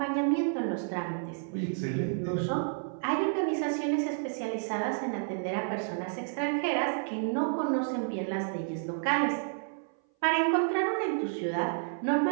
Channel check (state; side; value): silent; left; 57 dB below the other